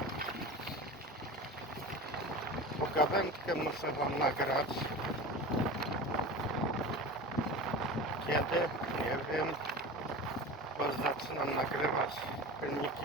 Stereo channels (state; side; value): normal; both; correlation 0.32